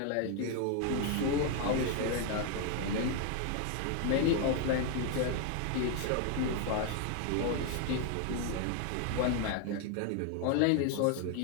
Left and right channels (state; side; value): different; both; correlation 0.01